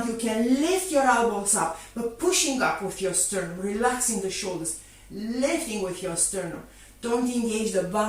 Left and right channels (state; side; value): identical; both; correlation 1.00